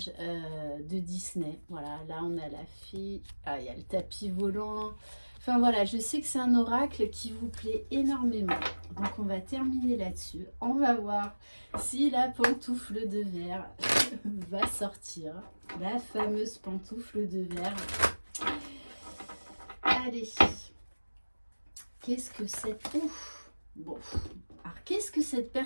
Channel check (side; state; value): both; inverted; correlation -1.00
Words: de Disney. Voilà, là on a la fée, il y a le tapis volant. Enfin voilà, je sais que c'est un oracle qui vous plaît énormément. Donc on va terminer là-dessus. On va voir si la pantoufle de verre va sortir, la fameuse pantoufle de verre. Allez, qu'est-ce que cette... Ouf. Bon, alors qu'est-ce que cette